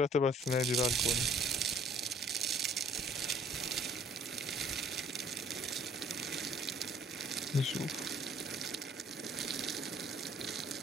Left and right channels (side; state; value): both; normal; correlation 0.58